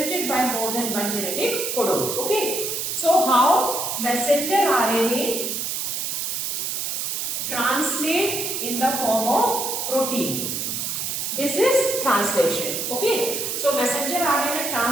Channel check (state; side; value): noise; right; hiss, 2 dB below the sound